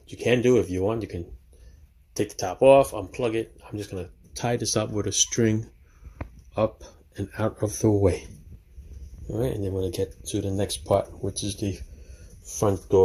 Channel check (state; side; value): identical; both; correlation 1.00